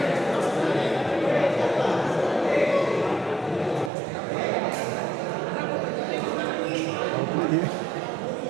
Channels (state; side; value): drops out; left; at 3.9 s